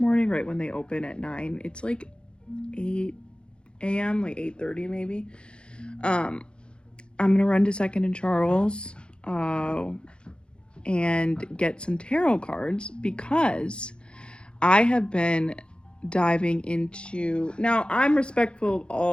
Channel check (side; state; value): right; late; 0.054 ms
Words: right when they open at 9. It's like 8 a.m., like 8:30 maybe. I'm gonna run to 2nd and Charles and get some tarot cards, because I have been diving into, now I'm respectful of